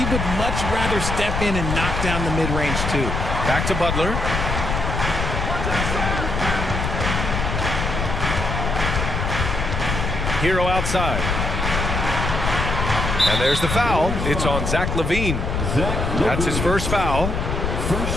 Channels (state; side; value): noise; left; rumble, 2 dB below the sound